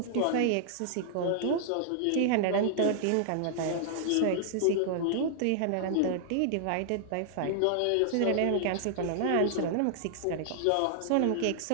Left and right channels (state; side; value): different; both; correlation -0.01